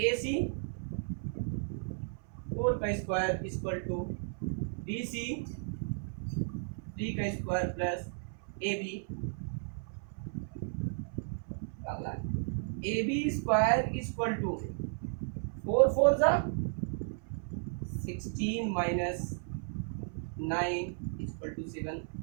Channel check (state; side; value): silent; left; 55 dB below the other